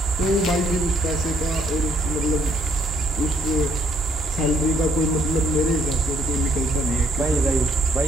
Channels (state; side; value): normal; both; correlation 0.69